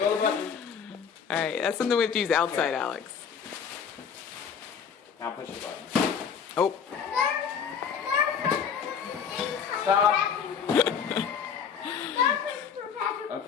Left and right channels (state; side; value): quieter; right; 7.0 dB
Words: of the button. Alright, that's something we have to use outside, Okay. Alex. Now push the button. Oh. Stop.